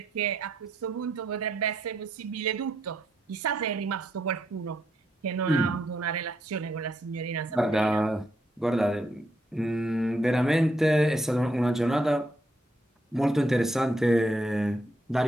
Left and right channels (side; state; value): both; normal; correlation 0.77